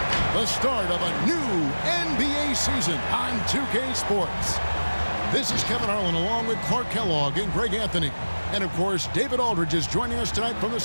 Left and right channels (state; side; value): inverted; both; correlation -1.00